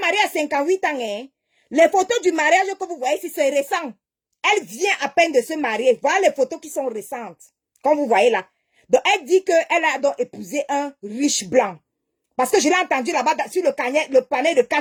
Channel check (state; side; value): identical; both; correlation 1.00